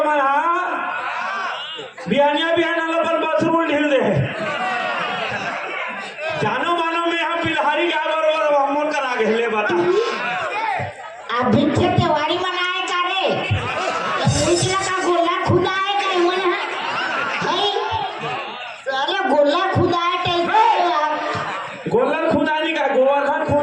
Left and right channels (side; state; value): both; identical; correlation 1.00